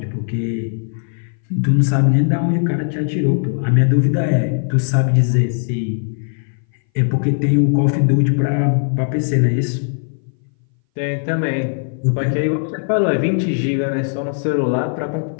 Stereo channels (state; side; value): silent; right; 60 dB below the other